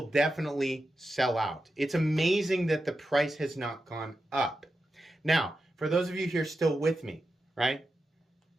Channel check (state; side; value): normal; both; correlation 0.90